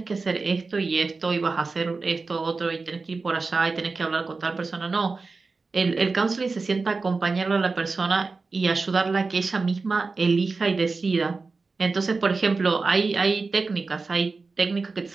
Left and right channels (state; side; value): quieter; left; 4.1 dB